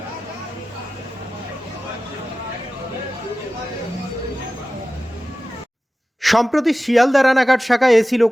সম্প্রতি শিয়ালদা রানাঘাট শাখায় AC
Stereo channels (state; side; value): normal; both; correlation 0.95